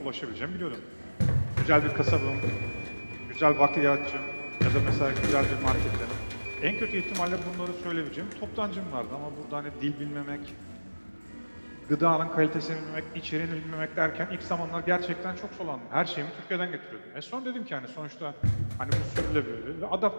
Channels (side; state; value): both; inverted; correlation -1.00